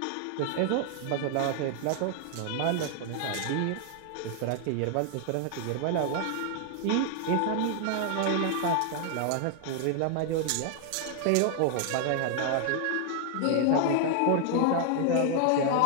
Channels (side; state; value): both; different; correlation 0.00